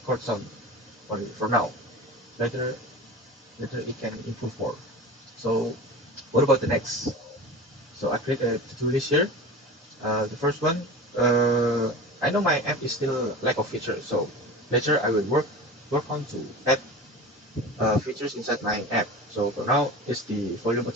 chord sound for now. Later later it can improve more. So what about the next? So I create a to-do list here. The first one, I know my app is still lack of features, so later I will work on to add features inside my app. So for now, it's the volume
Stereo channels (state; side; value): normal; both; correlation 0.33